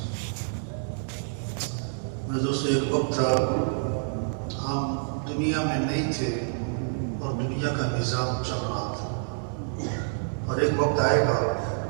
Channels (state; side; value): silent; left; digital silence